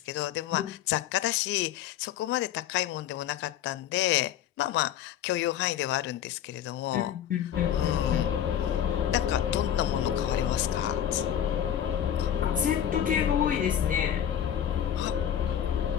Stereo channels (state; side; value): quieter; right; 10.2 dB